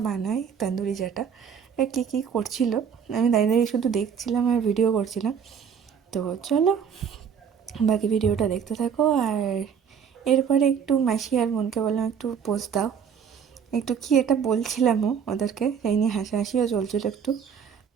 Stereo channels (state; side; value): quieter; left; 7.3 dB